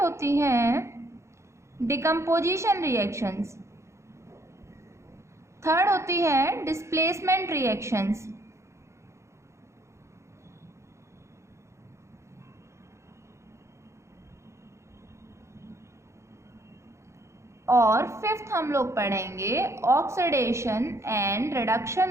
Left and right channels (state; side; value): late; left; 0.14 ms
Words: हैं डिकम्पोजिशन रिएक्शंस। थर्ड होती है डिस्प्लेसमेंट रिएक्शंस। और फिफ्थ हम लोग पढ़ेंगे oxidation and